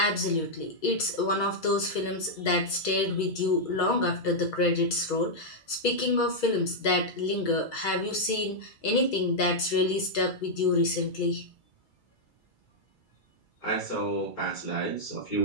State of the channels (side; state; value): right; late; 2.3 ms